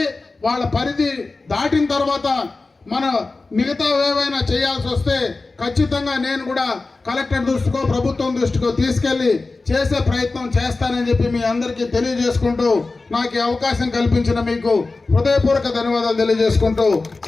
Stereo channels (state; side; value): quieter; right; 3.6 dB